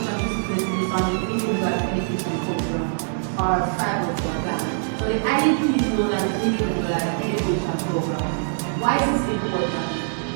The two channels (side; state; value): left; silent; digital silence